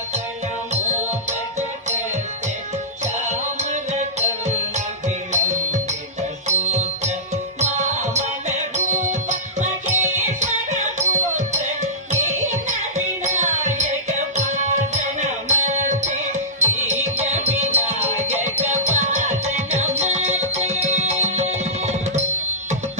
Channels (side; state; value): both; normal; correlation -0.19